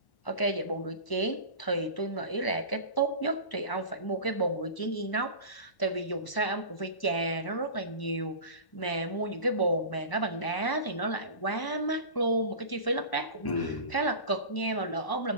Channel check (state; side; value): late; right; 1.0 ms